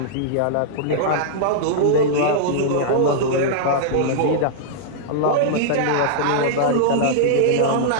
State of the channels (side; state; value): both; different; correlation -0.02